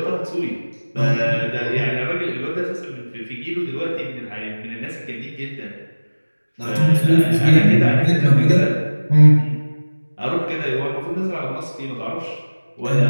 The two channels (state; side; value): inverted; both; correlation -1.00